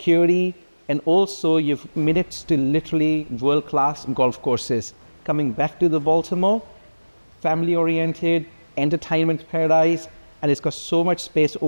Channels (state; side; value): inverted; both; correlation -1.00